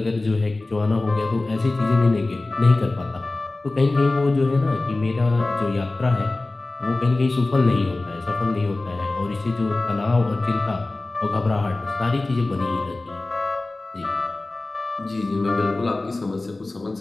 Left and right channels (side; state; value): right; quieter; 3.1 dB